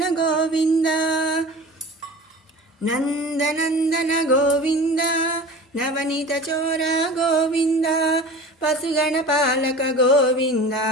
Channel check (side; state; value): both; normal; correlation 0.37